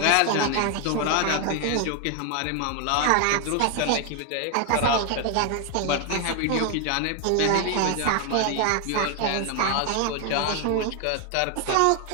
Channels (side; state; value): both; different; correlation 0.01